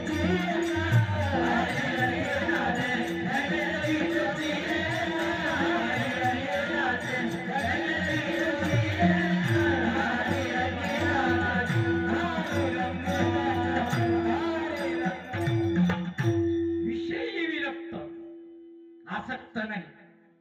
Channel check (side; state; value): both; identical; correlation 1.00